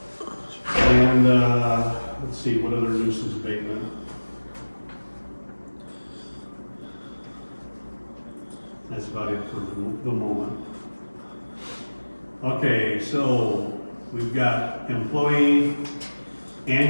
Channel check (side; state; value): both; inverted; correlation -1.00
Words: And, let's see, what other nuisance abatement? That's about it for the moment. Okay, so we've got employee